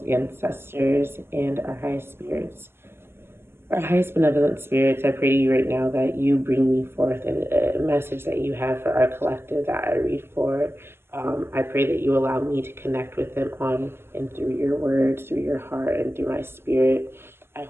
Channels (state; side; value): late; left; 0.12 ms